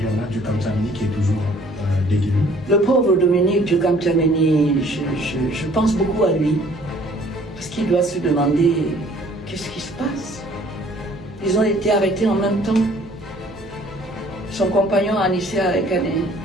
On a Djukam Djameni qui est toujours détenu. Le pauvre Dominique Djukam Djameni, je pense beaucoup à lui. Parce qu'il doit se demander qu'est-ce qui se passe. Ils ont été arrêtés en même temps. Son compagnon Anissa Kané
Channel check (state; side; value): noise; right; hum, 22 dB below the sound